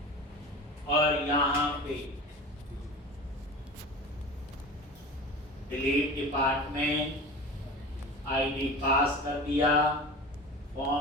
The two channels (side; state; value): both; normal; correlation 0.34